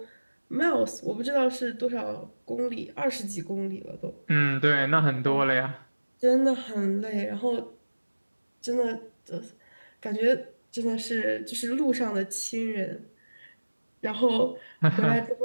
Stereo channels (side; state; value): both; inverted; correlation -1.00